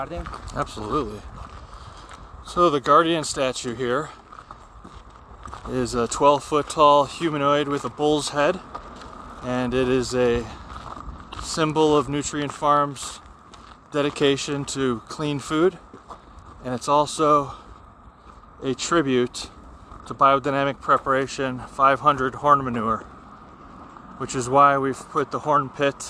Absolutely. So the guardian statue here is a 12-foot tall humanoid with a bull's head, and it is a symbol of Nutrient Farm's dedication to clean food, and it's also a tribute to Biodynamic Preparation 500 horn manure, which is why we've put the horn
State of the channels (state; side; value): identical; both; correlation 1.00